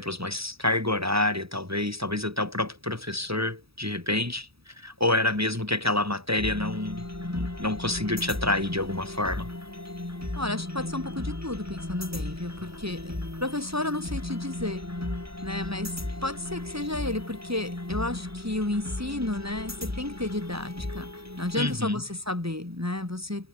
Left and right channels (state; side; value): late; left; 0.77 ms